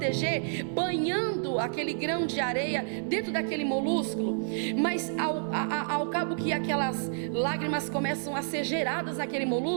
banhando aquele grão de areia dentro daquele molúsculo. Mas ao cabo que aquelas lágrimas começam a ser geradas naquele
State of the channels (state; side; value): silent; left; digital silence